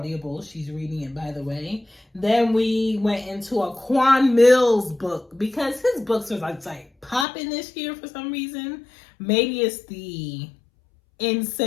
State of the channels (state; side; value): drops out; right; at 7.2 s